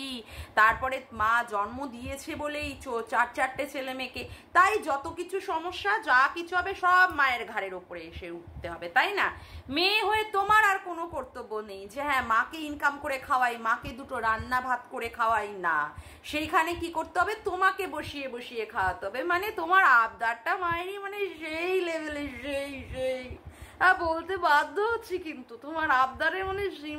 তারপরে মা জন্ম দিয়েছে বলেই 4-4টে ছেলে মেয়েকে, তাই যত কিছু সমস্যা যা কিছু হবে সব মায়ের ঘাড়ের ওপরে এসে উঠতে হবে, তাই না? মেয়ে হয়ে তোমার আর কোনো কর্তব্য নেই যে হ্যাঁ মাকে ইনকাম করে খাওয়াই, মাকে দুটো রান্না ভাত করে খাওয়াই, না, সেইখানে কি করতে হবে, তোমাকে বসিয়ে বসিয়ে খাওয়াতে হবে। মানে তোমার আবদারটা মায়েরই মানে সেই লেভেলে, সেই সেই বলতে বাধ্য হচ্ছি, কিন্তু তোমার আবদারে মানে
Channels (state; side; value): identical; both; correlation 1.00